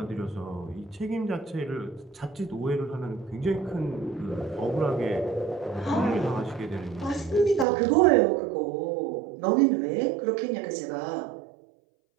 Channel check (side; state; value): left; drops out; at 7.7 s